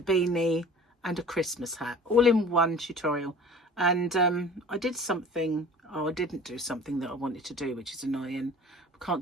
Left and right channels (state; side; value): normal; both; correlation 0.44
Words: and a Christmas hat, all in one tutorial. And I did something, I didn't do something that I wanted to do, which is annoying. I